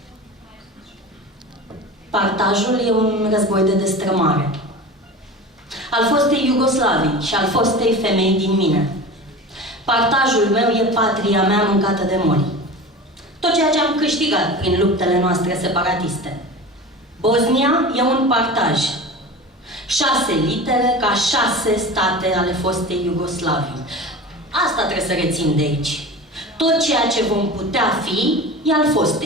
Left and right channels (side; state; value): both; normal; correlation 0.33